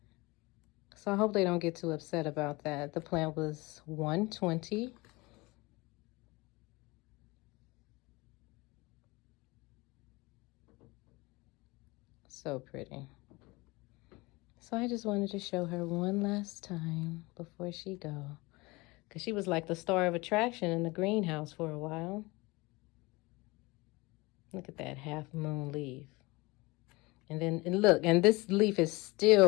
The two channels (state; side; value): quieter; right; 23.5 dB